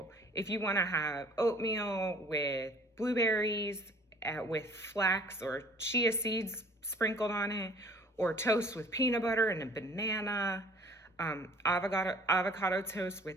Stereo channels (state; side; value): normal; both; correlation 0.52